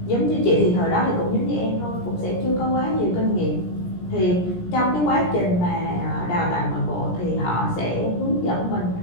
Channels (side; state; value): right; late; 17 ms